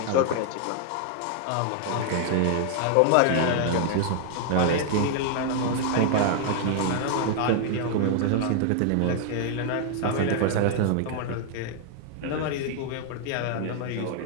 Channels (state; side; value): different; both; correlation 0.00